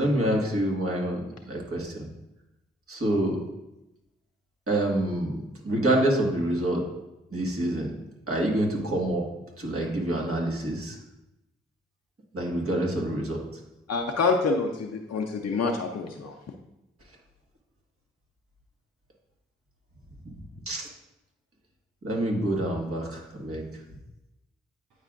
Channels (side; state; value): both; normal; correlation 0.58